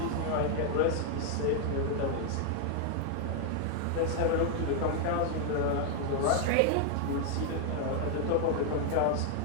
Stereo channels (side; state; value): both; different; correlation 0.00